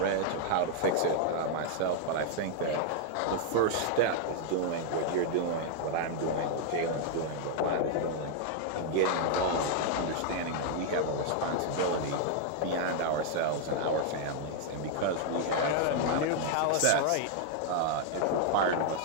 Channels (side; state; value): both; different; correlation 0.00